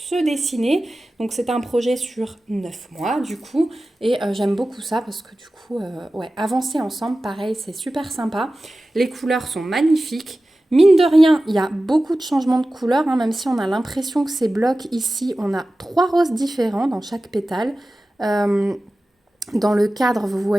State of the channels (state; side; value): normal; both; correlation 0.95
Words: dessiner. Donc c'est un projet sur 9 mois du coup. Et j'aime beaucoup ça parce que du coup, ouais, avancer ensemble, pareil, c'est super sympa. Les couleurs sont magnifiques. Mine de rien, il y a beaucoup de changements de couleurs, hein, même si on a l'impression que ces blocs ici, on a 3 roses différents dans chaque pétale. Dans le cadre, vous